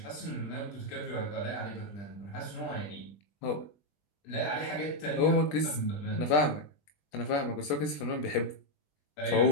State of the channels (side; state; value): right; late; 20 ms